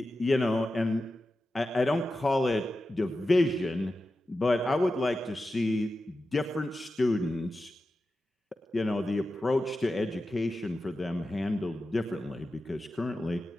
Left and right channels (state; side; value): normal; both; correlation 0.92